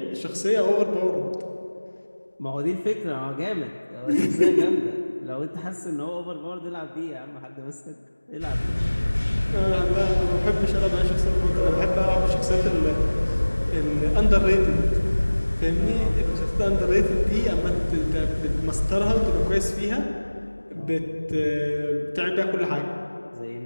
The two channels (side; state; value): both; inverted; correlation -1.00